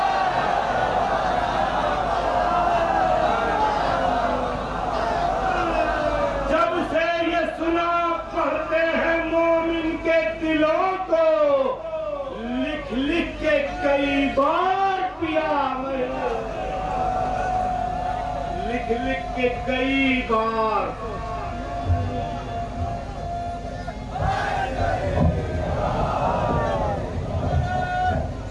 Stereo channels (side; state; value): both; identical; correlation 1.00